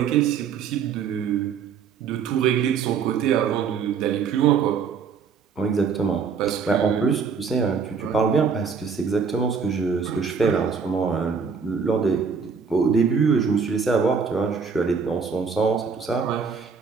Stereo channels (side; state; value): left; quieter; 6.0 dB